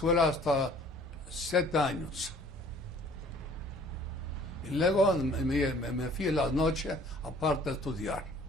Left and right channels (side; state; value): both; normal; correlation 0.54